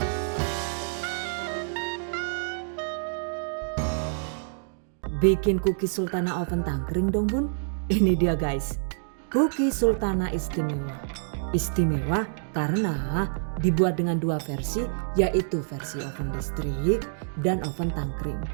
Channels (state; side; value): silent; left; digital silence